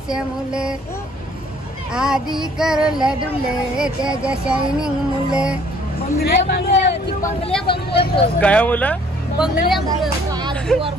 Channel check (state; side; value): normal; both; correlation 0.59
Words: मुले, आधी करला डुले त्याच्या शायनिंग मुले. काय मुलं?